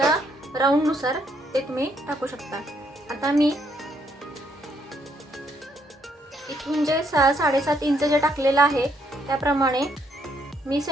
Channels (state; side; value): normal; both; correlation 0.72